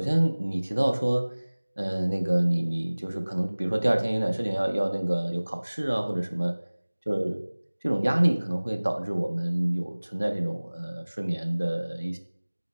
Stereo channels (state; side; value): inverted; both; correlation -1.00